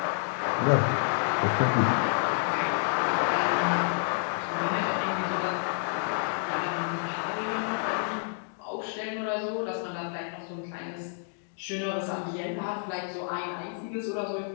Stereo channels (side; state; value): right; silent; digital silence